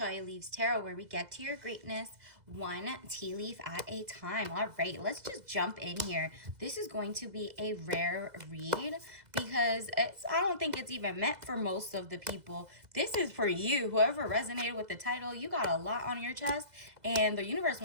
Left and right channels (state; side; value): late; left; 2.0 ms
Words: Leaves Tarot, where we get to your greatness one tea leaf at a time. All right, let's just jump in here. This is going to be a rare read because I don't think it's even meant for most of the people. This is for you. Whoever resonated with the title, you got a lot on your chest, and the universe